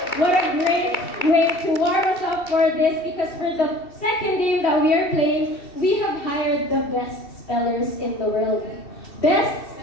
What a great way to warm us up for this because for the second game that we are playing, we have hired the best spellers in the world. Best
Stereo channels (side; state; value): right; late; 2.7 ms